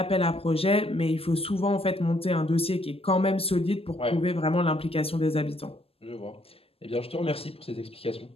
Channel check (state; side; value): late; right; 0.28 ms